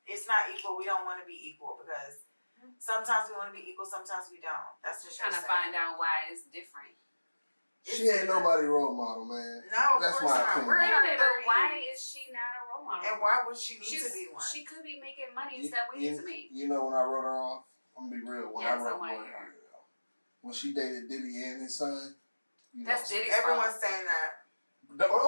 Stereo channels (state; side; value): inverted; both; correlation -1.00